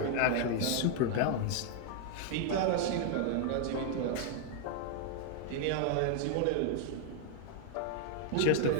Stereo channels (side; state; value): both; different; correlation 0.00